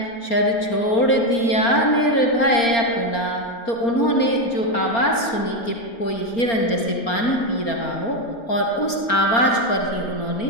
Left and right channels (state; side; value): late; right; 4.3 ms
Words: शर छोड़ दिया निर्भय अपना। तो उन्होंने जो आवाज़ सुनी कि कोई हिरन जैसे पानी पी रहा हो और उस आवाज़ पर ही उन्होंने